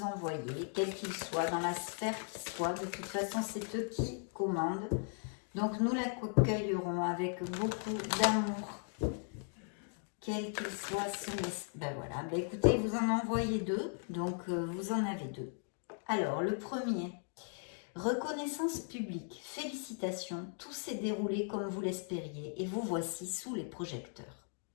envoyer, quel qu'il soit, dans la sphère qui soit. De toute façon, c'est eux qui commandent. Donc, nous l'accueillerons avec beaucoup d'amour. Quel qu'il soit ce message. Ben voilà, ben écoutez, vous en envoyez deux. Donc, vous en avez deux. Alors, le premier. Reconnaissance publique, félicitations, tout s'est déroulé comme vous l'espériez et vous voici sous les projecteurs.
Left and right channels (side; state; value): right; silent; 53 dB below the other